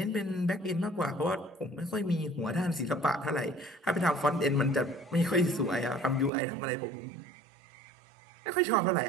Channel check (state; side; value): drops out; left; at 6.3 s